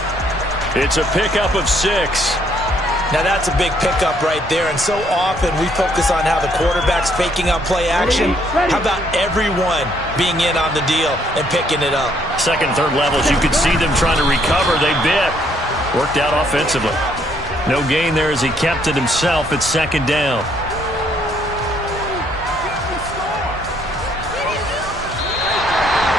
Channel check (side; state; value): both; normal; correlation 0.68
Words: It's a pickup of 6. Now that's a big pickup right there, and so often we focus on how the quarterback's faking out play action. How about everyone being in on the deal and picking it up? Second, third levels, you could see them trying to recover. They bit. Worked out offensively. No gain there as he kept it himself at second down.